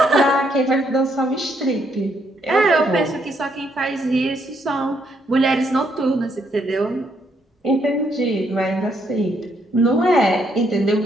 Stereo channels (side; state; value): both; normal; correlation 0.73